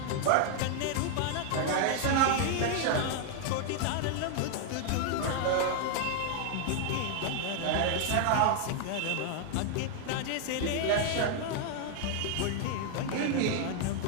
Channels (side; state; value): both; different; correlation 0.00